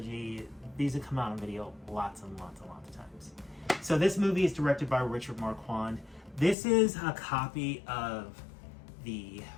These have come out on video lots and lots of times. So this movie is directed by Richard Marquand. This is a copy of the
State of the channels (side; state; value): right; drops out; at 6.6 s